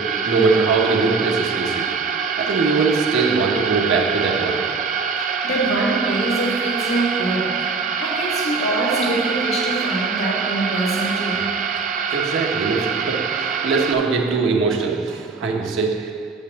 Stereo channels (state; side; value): quieter; left; 4.2 dB